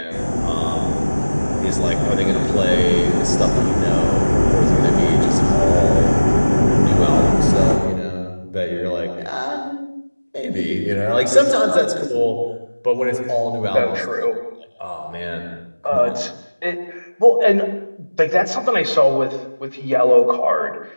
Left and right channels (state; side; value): inverted; both; correlation -1.00